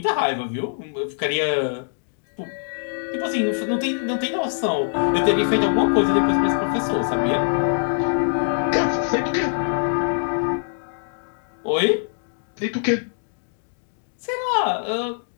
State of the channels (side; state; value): right; silent; digital silence